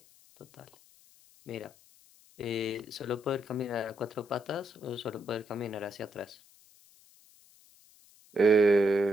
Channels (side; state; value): left; noise; hiss, 27 dB below the sound